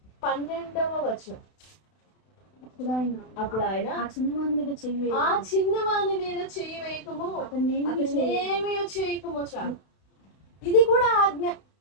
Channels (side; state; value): right; late; 32 ms